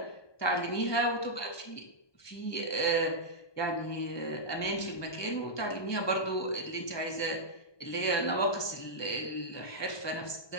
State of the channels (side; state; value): right; late; 1.2 ms